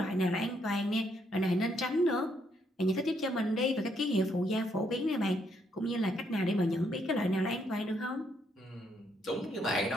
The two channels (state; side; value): normal; both; correlation 0.73